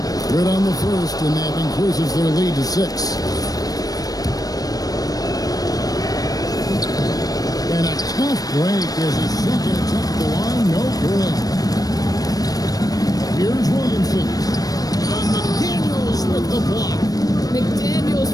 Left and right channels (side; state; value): right; late; 0.18 ms